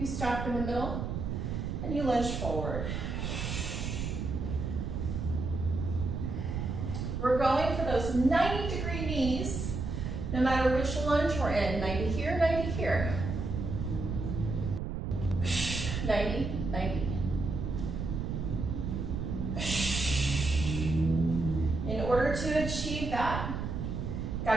stop in the middle, and you lunge forward. We're going for those 90-degree knees, no matter which lunge we're in. 90 here, 90 here. 90, 90. In order to achieve that,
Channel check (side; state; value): right; noise; rumble, 3 dB below the sound